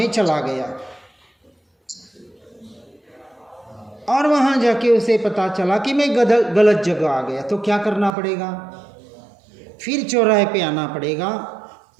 चला गया, और वहाँ जाके उसे पता चला कि मैं गलत जगह आ गया। तो क्या करना पड़ेगा? फिर चौराहे पे आना पड़ेगा,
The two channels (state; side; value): drops out; left; at 8.1 s